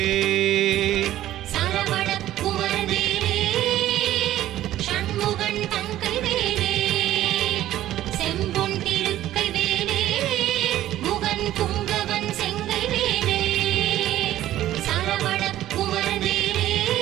சரவண குமரவேலே சண்முகன் தங்கைவேலே செம்பொன் திருக்கைவேலே முகன் புங்கவன் செங்கைவேலே சரவண குமரவேலே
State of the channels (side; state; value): left; quieter; 13.5 dB